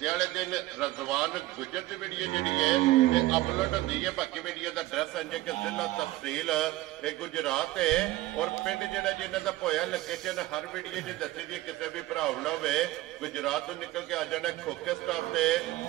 वाले दिन रजवान गुजर की वीडियो जी है ये अपलोड होती है। बाकी वीडियो का एड्रैस है कि जिला तहसील ये गुजरात है और पिंड जोड़ा जिन्हों का पोया लोकेशन हर वीडियो जी दसी दी किसी भी भरा गुजरात तो निकल के आ जाना खोखे स्टाफ से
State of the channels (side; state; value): left; quieter; 17.3 dB